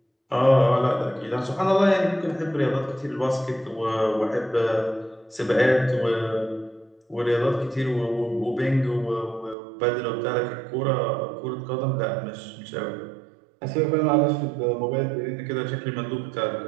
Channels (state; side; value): drops out; left; at 9.6 s